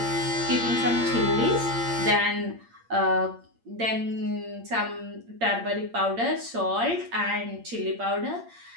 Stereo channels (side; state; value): left; late; 8.7 ms